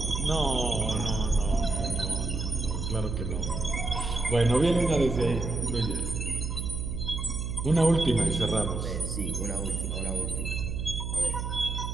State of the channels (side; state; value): right; noise; hum, 3 dB below the sound